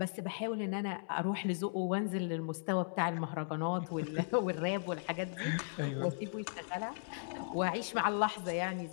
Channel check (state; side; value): silent; right; digital silence